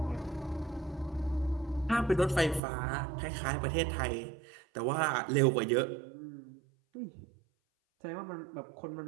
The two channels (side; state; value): left; drops out; at 2.6 s